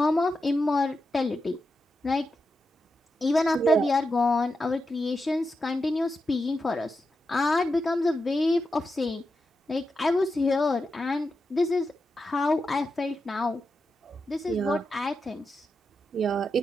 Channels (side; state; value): both; normal; correlation 0.88